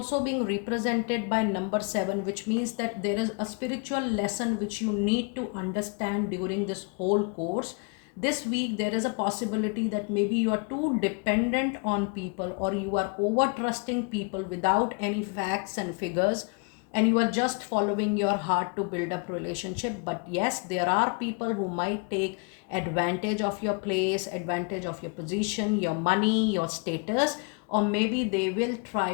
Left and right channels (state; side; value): quieter; right; 34.1 dB